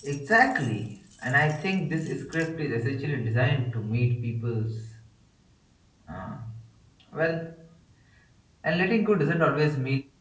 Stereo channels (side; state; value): both; identical; correlation 1.00